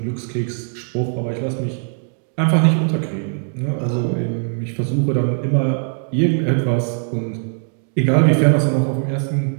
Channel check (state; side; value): silent; left; 60 dB below the other